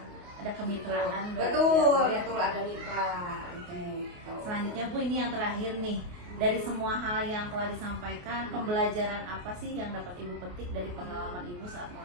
Ada kemitraan. Betul, berarti ya, Bu, ya? betul ada mitra gitu. Selanjutnya Bu, ini yang terakhir nih. Dari semua hal yang telah disampaikan, pembelajaran apa sih yang dapat ibu petik dari pengalaman ibu saat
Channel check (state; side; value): late; left; 28 ms